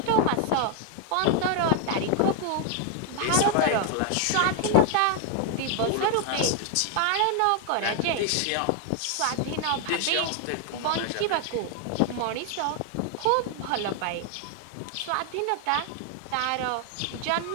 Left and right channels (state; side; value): different; both; correlation 0.00